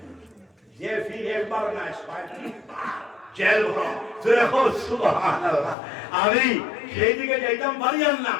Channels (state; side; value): drops out; right; at 5.8 s